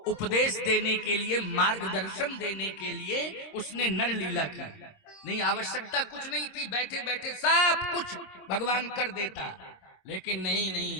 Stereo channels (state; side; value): late; right; 25 ms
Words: उपदेश देने के लिए, मार्गदर्शन देने के लिए उसने नर लीला की। नहीं, आवश्यकता कुछ नहीं थी, बैठे बैठे सब कुछ भगवान कर देता। लेकिन नहीं,